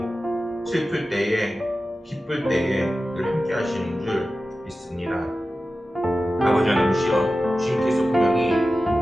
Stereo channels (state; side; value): normal; both; correlation 0.94